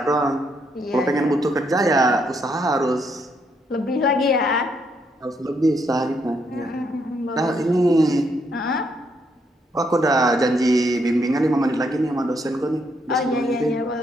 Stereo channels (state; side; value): normal; both; correlation 0.75